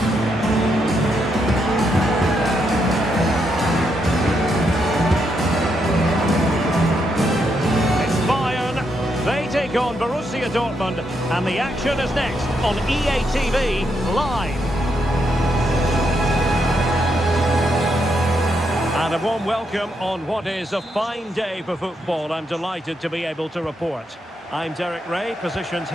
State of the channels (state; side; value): normal; both; correlation 0.79